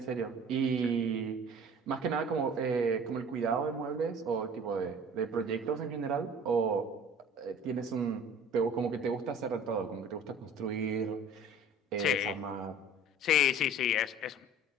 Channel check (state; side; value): normal; both; correlation 0.46